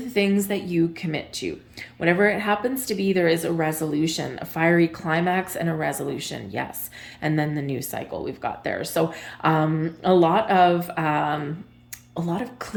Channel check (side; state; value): both; identical; correlation 1.00